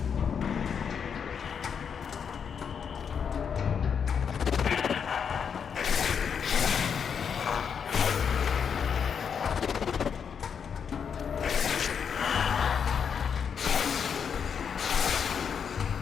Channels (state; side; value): quieter; right; 7.0 dB